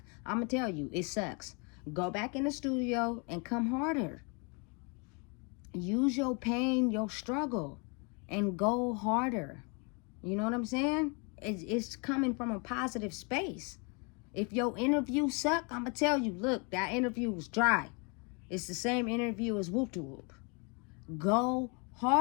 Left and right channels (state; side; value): quieter; right; 33.4 dB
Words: I'm going to tell you, it sucks. Go back in the studio and come harder. Use your pain, your struggle, and go harder. You know what I'm saying? It's coming from a positive space. If your interview suck, I'm going to tell you, look, that interview was dry. It's the same interview as whoop to whoop. Go